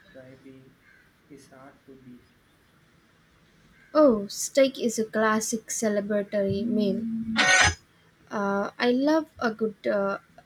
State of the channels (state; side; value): identical; both; correlation 1.00